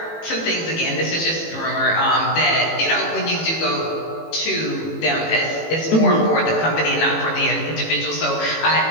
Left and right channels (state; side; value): late; right; 18 ms